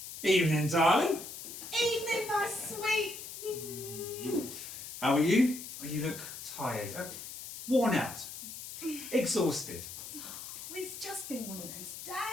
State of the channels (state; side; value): noise; left; hiss, 10 dB below the sound